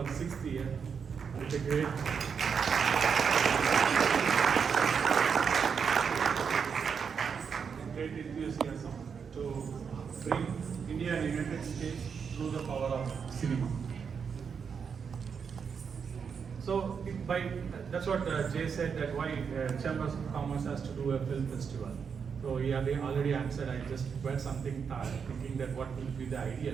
6th year. It's a great enthusiasm to bring India and United States through the power of cinema. So that's what Jay said, that why Chambers of Commerce has to do a film festival. So he already answered. I just read something thinking that what will be the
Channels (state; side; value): quieter; left; 6.4 dB